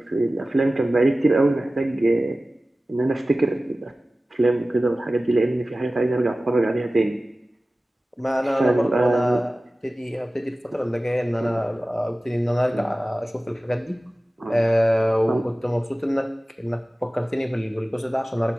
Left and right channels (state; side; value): normal; both; correlation 0.96